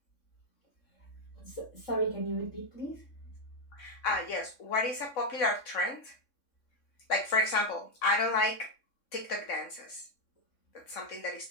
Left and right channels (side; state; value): right; late; 3.6 ms